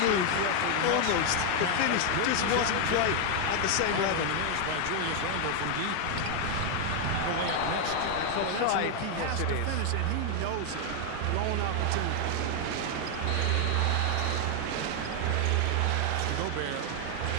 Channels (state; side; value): different; both; correlation 0.00